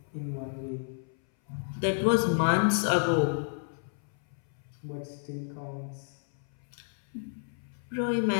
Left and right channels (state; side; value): silent; right; 57 dB below the other